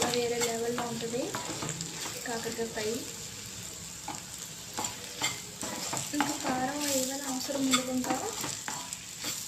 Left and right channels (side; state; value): both; identical; correlation 1.00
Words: వేరే లెవెల్లో ఉంటుంది కాకరకాయ ఫ్రై. ఇంకా కారం ఏమైనా అవసరం ఉండదు. ఇంకా